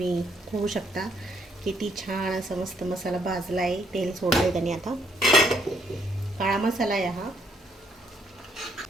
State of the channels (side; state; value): both; normal; correlation 0.70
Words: होऊ शकता किती छान असा मस्त मसाला भाजला आहे, तेल सोडलं आहे त्याने. आता काळा मसाला आहे हा.